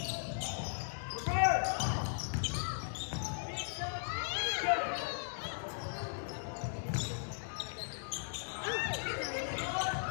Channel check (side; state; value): right; silent; digital silence